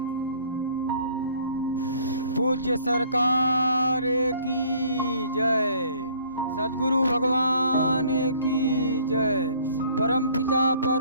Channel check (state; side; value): inverted; both; correlation -0.57